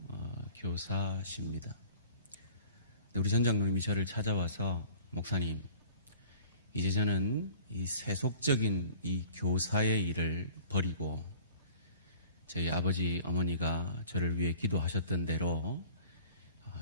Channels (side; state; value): both; inverted; correlation -0.48